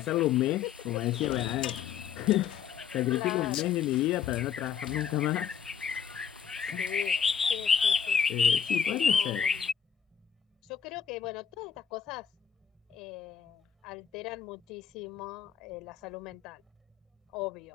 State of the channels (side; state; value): right; quieter; 8.1 dB